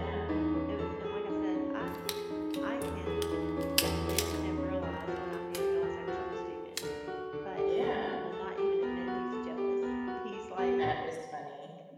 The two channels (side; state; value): both; identical; correlation 1.00